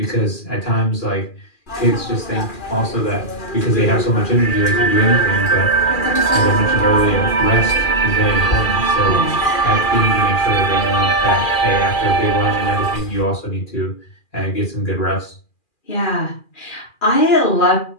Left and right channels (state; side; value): late; right; 2.4 ms